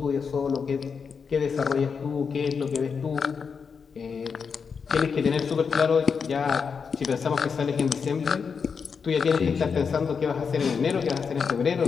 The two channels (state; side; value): quieter; right; 5.9 dB